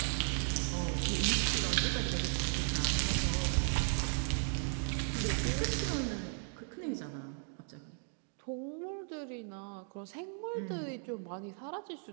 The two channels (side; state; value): left; silent; 54 dB below the other